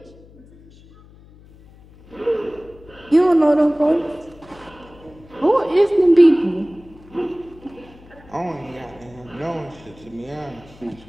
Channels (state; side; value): noise; left; hum, 24 dB below the sound